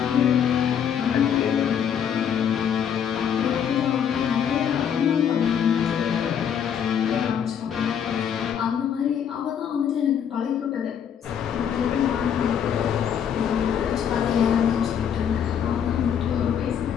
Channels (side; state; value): right; quieter; 8.4 dB